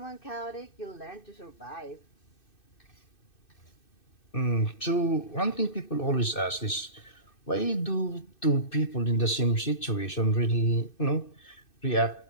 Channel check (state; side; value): late; right; 2.6 ms